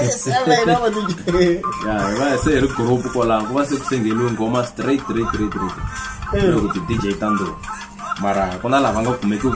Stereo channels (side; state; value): both; identical; correlation 1.00